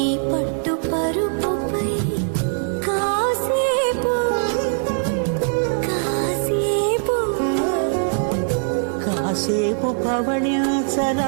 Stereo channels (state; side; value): silent; left; digital silence